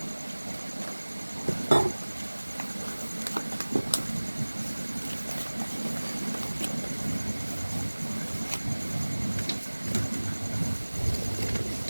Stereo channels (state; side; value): inverted; both; correlation -1.00